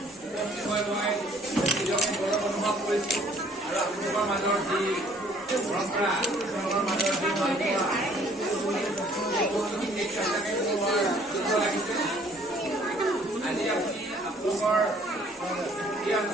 উপস্থিত হৈ মই নিজকে গৌৰৱ অনুভৱ কৰিছোঁ আৰু আপোনালোকৰ মাজৰ যি পৰম্পৰা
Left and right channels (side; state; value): both; normal; correlation 0.59